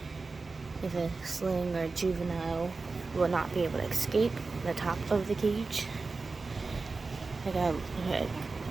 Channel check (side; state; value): left; quieter; 4.0 dB